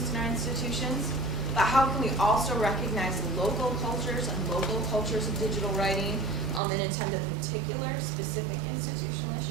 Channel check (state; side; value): drops out; left; at 6.6 s